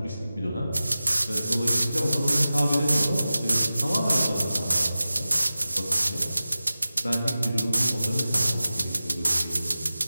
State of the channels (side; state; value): both; inverted; correlation -0.95